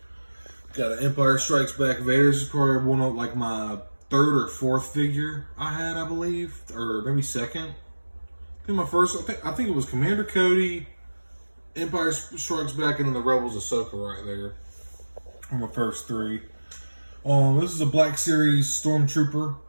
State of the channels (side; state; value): both; inverted; correlation -1.00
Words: Got an Empire Strikes Back Vader. This is probably one of like my 3rd or 4th figure I had, I believe. Or maybe 2nd. I think my first, I think it was Commander Cody, Empire Strikes Back, and then the Rebels Ahsoka right there. On my first 3. This is a Black Series Stormtrooper